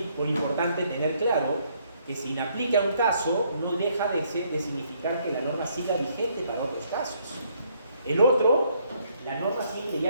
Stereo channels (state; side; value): inverted; both; correlation -0.69